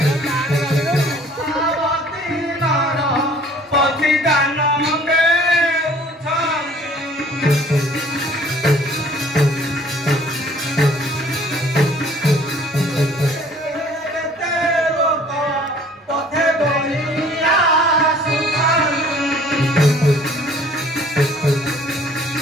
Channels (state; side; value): normal; both; correlation 0.54